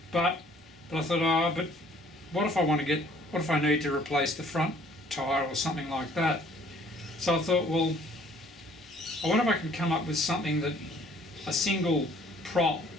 But I thought, oh, but what if I need to replace the front tyre or something like that? So I thought, well, I wonder if I can come up with something that a single prop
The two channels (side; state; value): both; normal; correlation 0.58